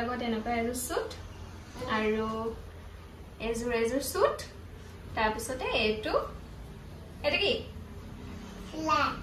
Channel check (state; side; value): identical; both; correlation 1.00